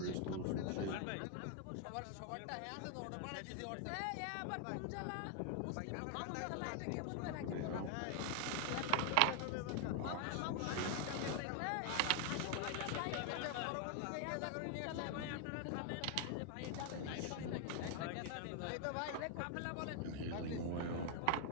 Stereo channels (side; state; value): both; different; correlation 0.00